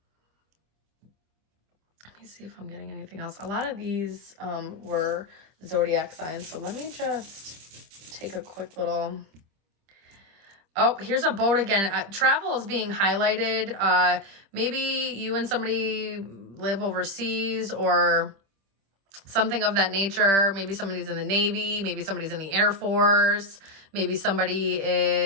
Let me see if I'm getting anything else. A lot of these were zodiac signs, so let me just take a quick little... Oh, here's a boat again. Travel is being highlighted. Maybe you and somebody live overseas or something of that nature. Maybe somebody's in the Navy. Maybe somebody's in the Air Force. Maybe somebody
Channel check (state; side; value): late; left; 25 ms